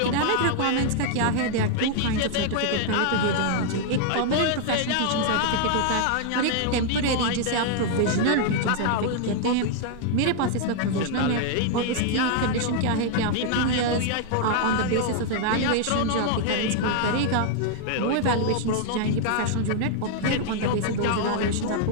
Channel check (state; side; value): different; both; correlation 0.00